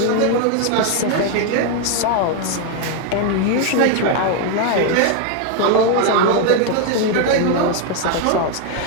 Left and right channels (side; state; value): both; different; correlation 0.01